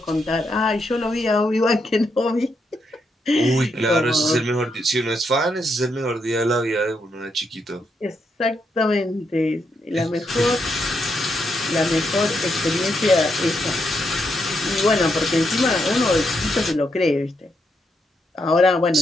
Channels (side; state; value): both; normal; correlation 0.80